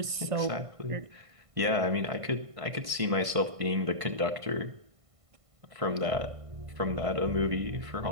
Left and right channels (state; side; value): late; left; 1.5 ms